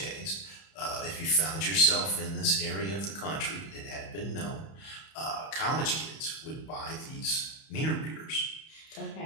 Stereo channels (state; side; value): late; right; 31 ms